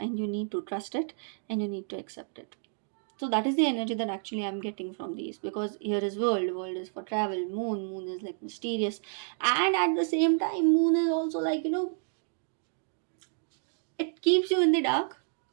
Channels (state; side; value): silent; left; digital silence